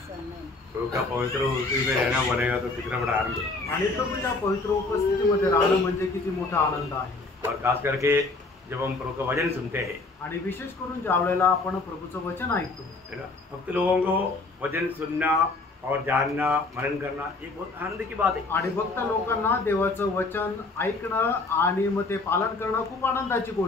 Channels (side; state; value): right; quieter; 3.5 dB